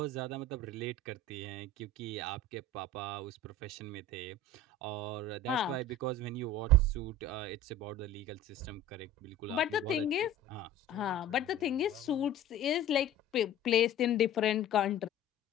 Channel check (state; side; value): normal; both; correlation 0.39